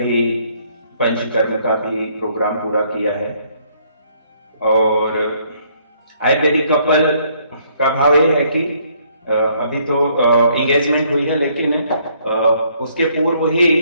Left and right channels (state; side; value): inverted; both; correlation -0.66